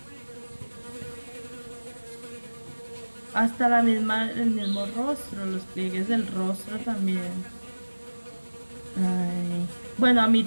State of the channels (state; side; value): inverted; both; correlation -1.00